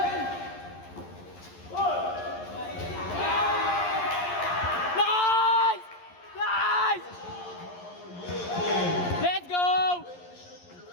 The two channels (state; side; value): late; right; 11 ms